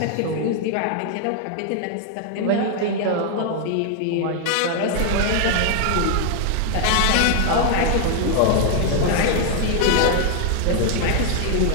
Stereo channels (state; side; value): different; both; correlation 0.00